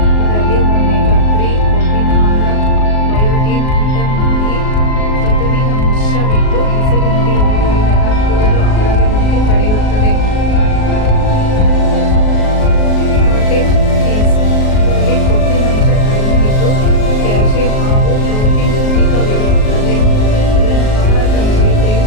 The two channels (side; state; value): right; late; 38 ms